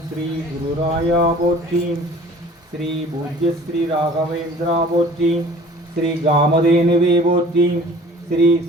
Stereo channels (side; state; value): both; normal; correlation 0.48